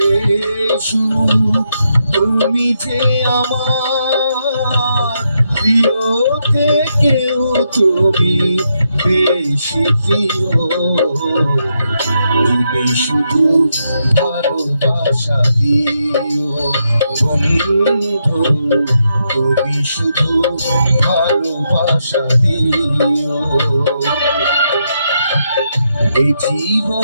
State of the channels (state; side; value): inverted; both; correlation -0.81